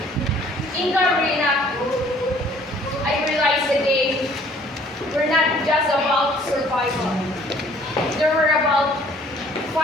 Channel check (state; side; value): normal; both; correlation 0.57